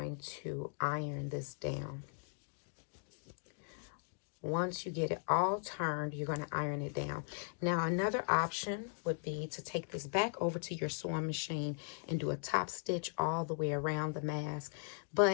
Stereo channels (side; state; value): right; silent; 52 dB below the other